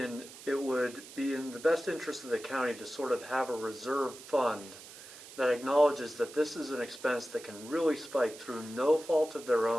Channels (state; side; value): noise; right; hiss, 16 dB below the sound